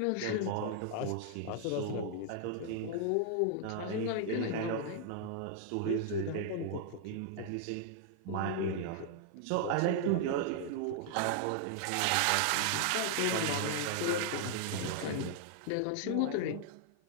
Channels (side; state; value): both; different; correlation 0.00